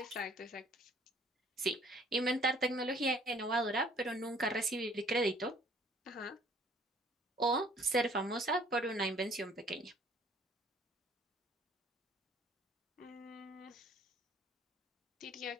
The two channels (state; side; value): normal; both; correlation 0.57